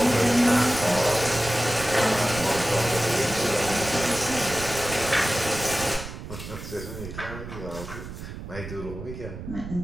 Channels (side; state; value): right; noise; rumble, 10 dB below the sound